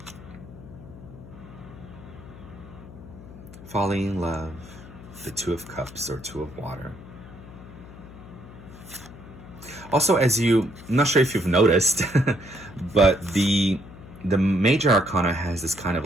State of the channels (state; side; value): noise; left; hum, 17 dB below the sound